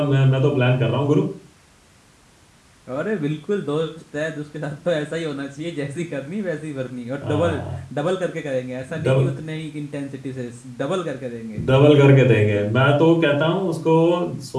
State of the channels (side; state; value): both; identical; correlation 1.00